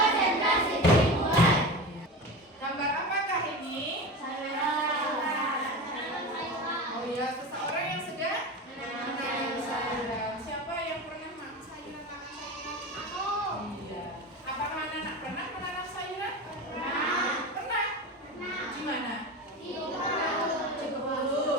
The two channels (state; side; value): normal; both; correlation 0.27